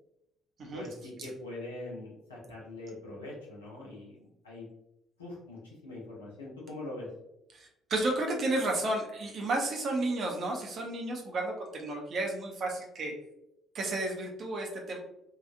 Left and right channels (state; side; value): normal; both; correlation 0.67